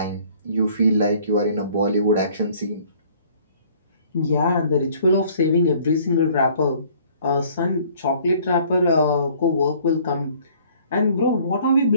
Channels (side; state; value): both; inverted; correlation -0.57